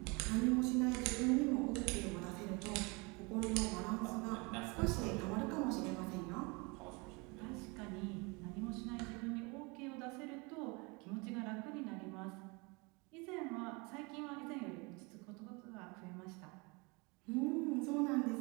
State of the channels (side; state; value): left; quieter; 28.4 dB